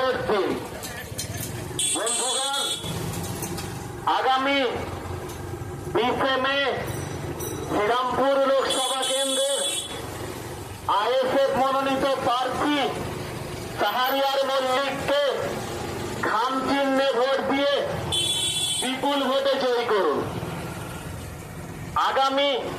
দিন। বন্ধুগণ, আগামী 20 মে শ্রীরামপুর লোকসভা কেন্দ্রের আইএসএফ মনোনীত প্রার্থী শাহরিয়ার মল্লিককে খাম চিহ্নে ভোট দিয়ে বিপুল ভোটে জয়ী করুন। আগামী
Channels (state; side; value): identical; both; correlation 1.00